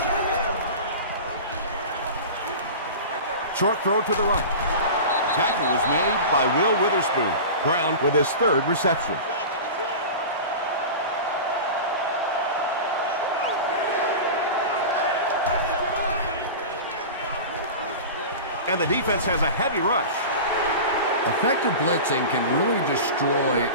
Short throw to the right. Tackle was made by Will Witherspoon. Brown with his 3rd reception. And the defense has a heavy rush. Effective blitzing can really destroy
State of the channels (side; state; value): both; inverted; correlation -0.31